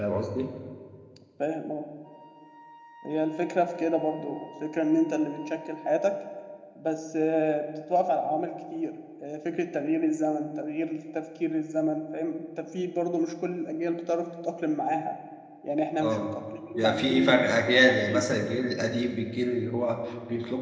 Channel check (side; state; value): both; identical; correlation 1.00